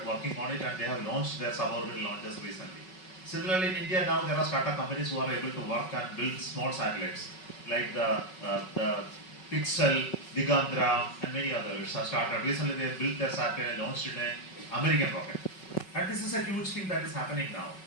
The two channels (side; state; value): right; late; 5.3 ms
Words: working on it, and they have launched their suborbital launches recently. Similarly, in India now there are startup companies who are able to work and build small satellites, like the Pixel, Digandra, and many others have started. Recently, they built their satellite, launched in an American rocket. And this is a huge thing that is happening now.